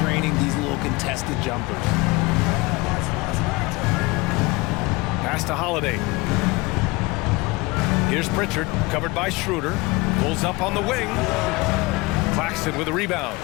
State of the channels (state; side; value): quieter; right; 23.3 dB